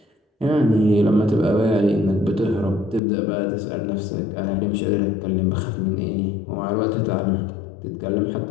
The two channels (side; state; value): right; drops out; at 3.0 s